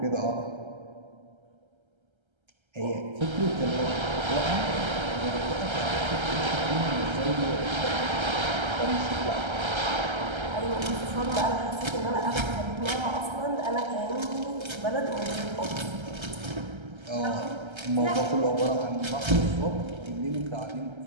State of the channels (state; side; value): late; left; 1.3 ms